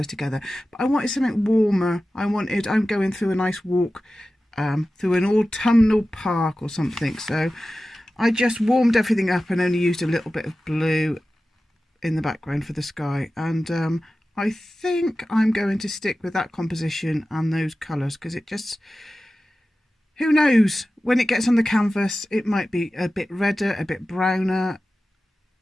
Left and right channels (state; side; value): normal; both; correlation 0.95